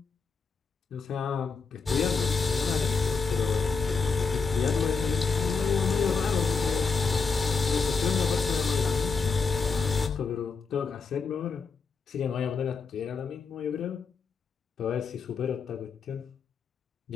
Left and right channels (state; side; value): quieter; right; 4.8 dB